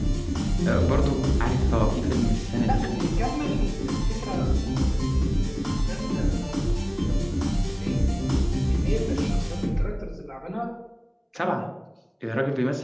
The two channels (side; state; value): both; identical; correlation 1.00